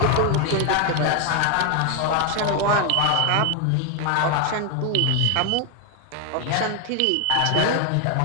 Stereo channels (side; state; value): both; different; correlation 0.01